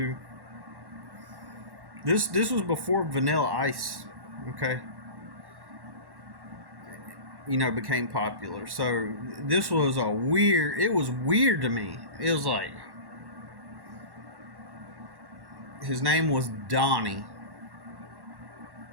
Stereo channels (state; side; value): late; left; 1.1 ms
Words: This was before Vanilla Ice, okay? Became popular. So this was it was weird to me. It was like, his name was Donnie,